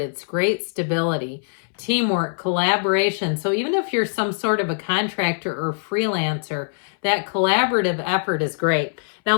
It's great stability. teamwork, collaboration. So even if you're some sort of a contractor or freelancer, that collaborative effort is great. Now,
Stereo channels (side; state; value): right; silent; 62 dB below the other